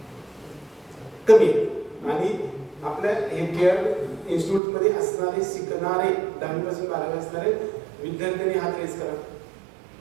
कमी आणि आपल्या हे केअर इन्स्टिट्यूट मध्ये असणारे शिकणारे 10वी पासून 12वी असणारे विद्यार्थ्यांनी हात रेज करा.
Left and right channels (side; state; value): left; drops out; at 4.6 s